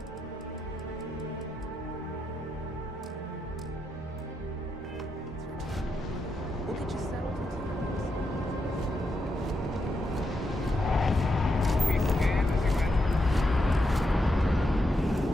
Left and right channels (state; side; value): normal; both; correlation 0.83